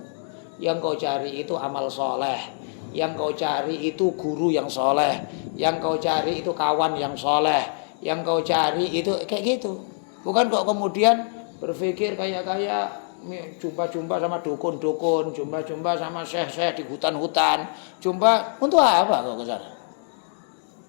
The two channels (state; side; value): silent; right; digital silence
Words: Yang kau cari itu amal soleh. Yang kau cari itu guru yang soleh. Yang kau cari itu kawan yang soleh. Yang kau cari itu kayak gitu. Bukan kok kemudian berpikir kayak jumpa-jumpa sama dukun-dukun, jumpa-jumpa sama syekh-syekh di hutan-hutan, jumpa untuk apa kok ke sana?